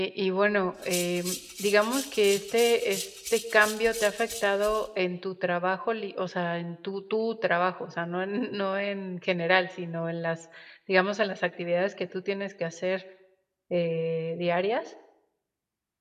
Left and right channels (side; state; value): both; identical; correlation 1.00